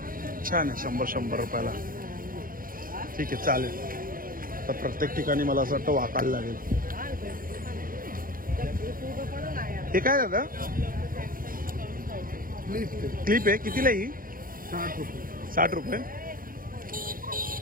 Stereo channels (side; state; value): left; late; 0.41 ms